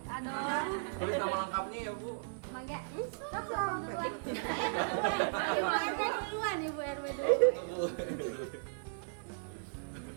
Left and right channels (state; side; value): silent; left; 54 dB below the other